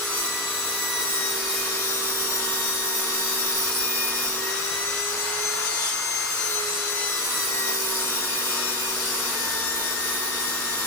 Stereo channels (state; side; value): normal; both; correlation 0.07